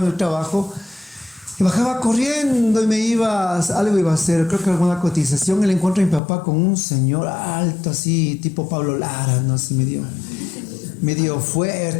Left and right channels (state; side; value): drops out; right; at 6.2 s